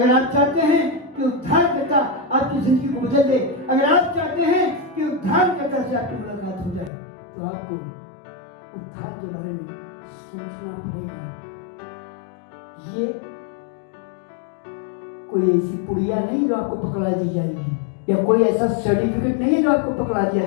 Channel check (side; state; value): right; drops out; at 6.9 s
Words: आप चाहते हैं कि उद्धारकर्ता आपकी जिंदगी को बदल दे, अगर आप चाहते हैं कि उद्धारकर्ता से आपकी मुलाकात हो जाए, तो आपको उद्धार के बारे में सोचना पड़ेगा। ये कोई ऐसी पुड़िया नहीं जो आपको पकड़ा दी जाएगी, या कोई ऐसा सर्टिफिकेट नहीं है जो आपको पकड़ा